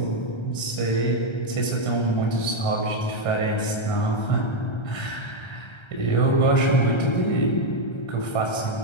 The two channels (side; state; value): right; late; 1.3 ms